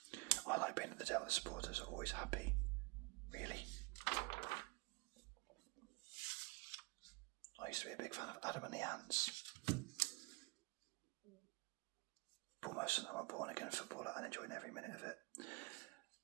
other supporters are always happy. Really. I used to be a big fan of Adam and the Ants. But most of them are born again footballer and enjoying every minute of it.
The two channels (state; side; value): quieter; left; 26.4 dB